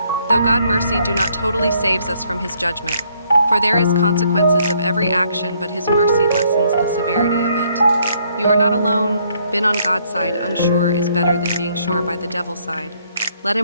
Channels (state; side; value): inverted; both; correlation -0.68